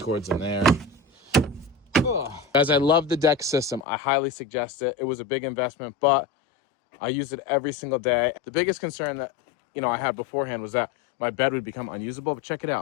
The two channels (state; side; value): drops out; right; at 3.9 s